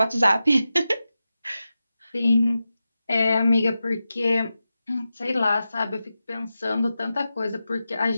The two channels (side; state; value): both; inverted; correlation -0.92